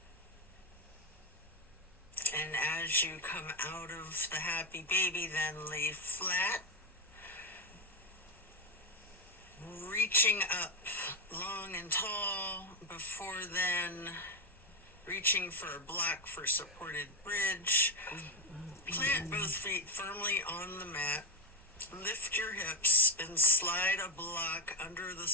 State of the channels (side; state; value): both; normal; correlation 0.13